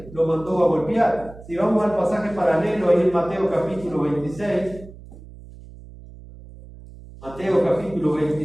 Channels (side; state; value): right; noise; hum, 18 dB below the sound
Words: lo mandó a golpear. Si vamos al pasaje paralelo ahí en Mateo capítulo 26, Mateo capítulo